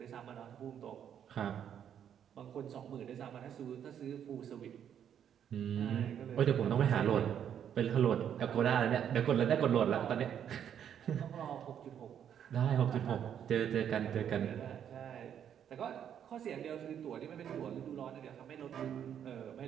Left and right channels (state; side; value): quieter; left; 9.1 dB